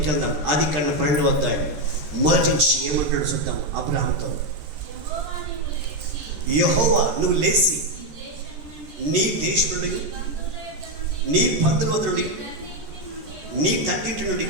వెళ్దాం. ఆదికాండం 12వ అధ్యాయం మొదటి నుంచి ఏమంటాడు చూద్దాం. అబ్రహాంతో, యెహోవా నువ్వు లేచి నీ దేశం నుండి, నీ బంధువుల నుండి, నీ తండ్రింటి నుండి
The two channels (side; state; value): left; late; 13 ms